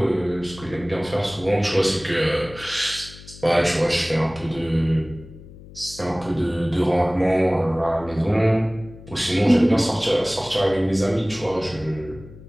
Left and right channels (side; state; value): left; noise; hum, 18 dB below the sound